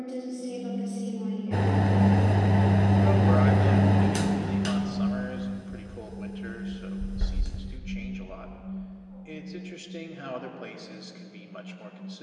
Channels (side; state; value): both; identical; correlation 1.00